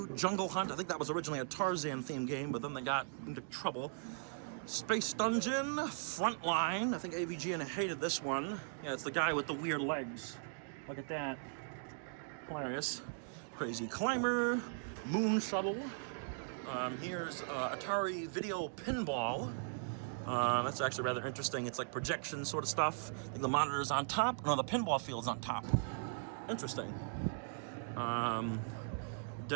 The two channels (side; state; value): left; silent; digital silence